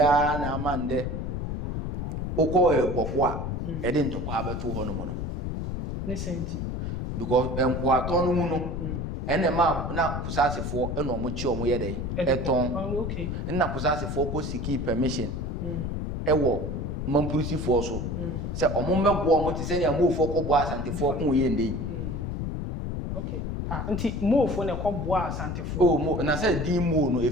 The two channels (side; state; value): left; noise; rumble, 3 dB below the sound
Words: na amande uko ebokwa edi ntokwa abeto ho no mo no ne senti because enkwa to no mu no ene ma na kusasefo ene omo chi omo ye de eton okay na kusasefo ko siki permission ewo mampurusifo so se omo mebo omo ti se ne amofo ko bo asantefo ko ye ndey okay nti mofo ne ko bo asantefo mo na se di mo no